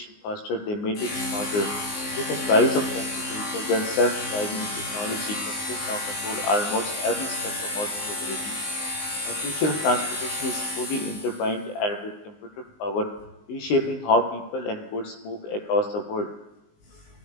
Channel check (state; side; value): late; right; 19 ms